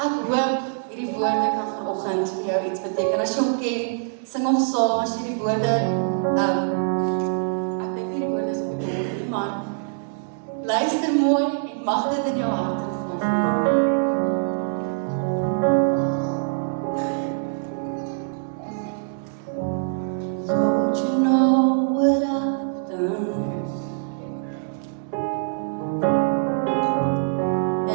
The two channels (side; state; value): left; silent; digital silence